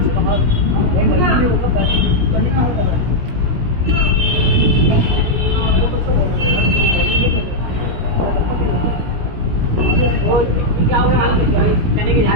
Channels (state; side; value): late; left; 17 ms